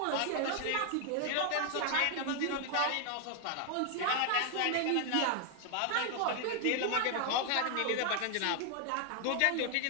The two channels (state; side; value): different; both; correlation 0.00